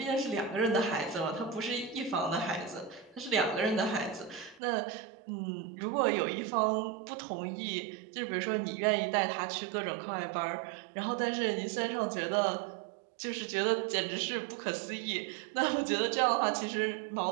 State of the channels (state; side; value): drops out; left; at 4.6 s